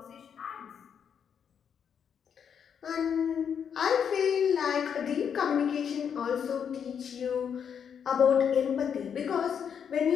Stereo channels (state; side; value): quieter; right; 7.6 dB